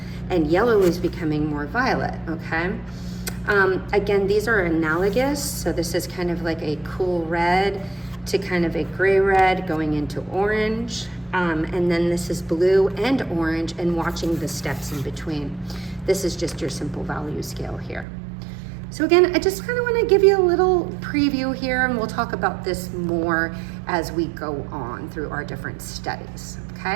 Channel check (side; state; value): left; drops out; at 18.1 s